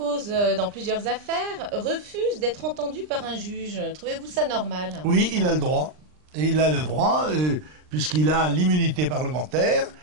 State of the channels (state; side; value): late; left; 39 ms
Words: dans plusieurs affaires, refuse d'être entendu par un juge. Trouvez-vous ça normal ? Oui, il a le droit. Et il a le droit, puisqu'il a l'immunité parlementaire,